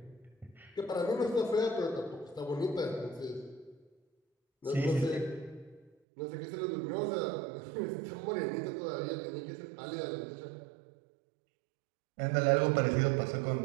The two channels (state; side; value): drops out; left; at 5.9 s